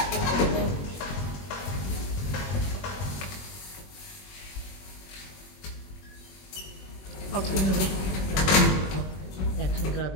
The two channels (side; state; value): right; late; 21 ms